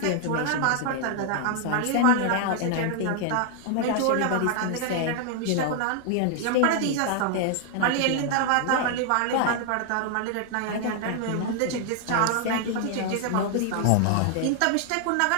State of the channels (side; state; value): both; different; correlation 0.00